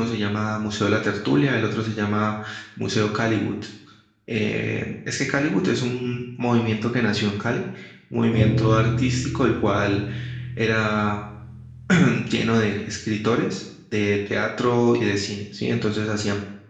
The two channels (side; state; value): both; identical; correlation 1.00